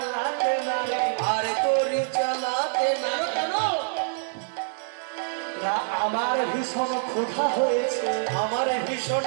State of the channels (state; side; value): silent; left; digital silence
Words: না রে, আর তোরি চালাতে না। কেন না? আমার ভীষণ ক্ষুধা হয়েছে, আমার ভীষণ